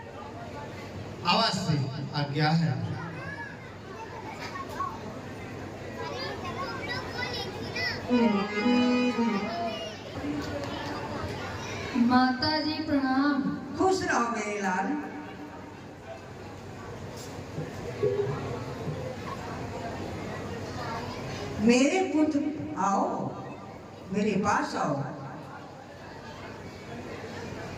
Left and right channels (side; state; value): both; identical; correlation 1.00